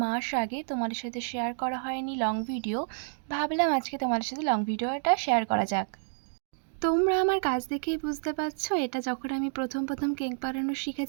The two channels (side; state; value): left; silent; digital silence